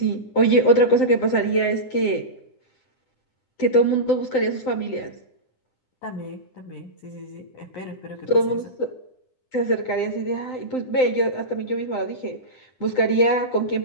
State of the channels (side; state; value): right; late; 10 ms